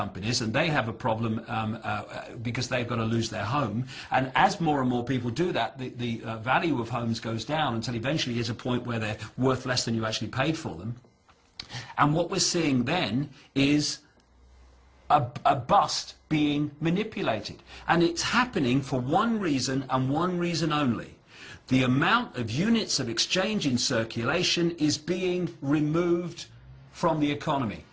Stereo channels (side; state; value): both; identical; correlation 1.00